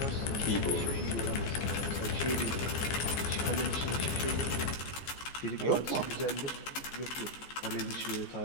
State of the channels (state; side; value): late; right; 14 ms